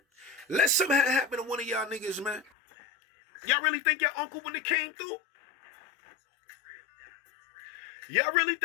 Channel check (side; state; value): right; drops out; at 2.5 s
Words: Let something happen to one of y'all niggas, man. Y'all really think your uncle when it came through? Y'all really